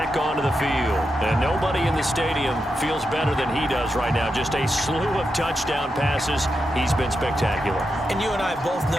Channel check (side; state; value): both; normal; correlation 0.87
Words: onto the field. And nobody in the stadium feels better than he does right now. Just a slew of touchdown passes. He's been spectacular. And you and I both